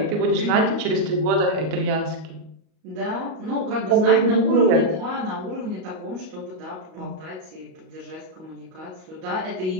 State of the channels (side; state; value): left; late; 38 ms